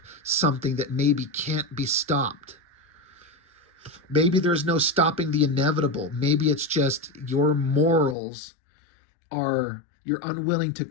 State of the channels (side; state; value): right; drops out; at 8.2 s